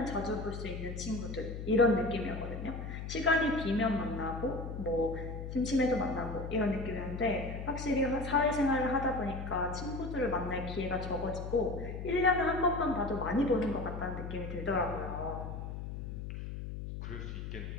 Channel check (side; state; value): left; noise; hum, 7 dB below the sound